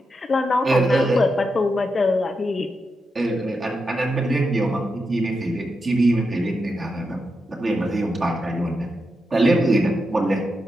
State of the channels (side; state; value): both; normal; correlation 0.86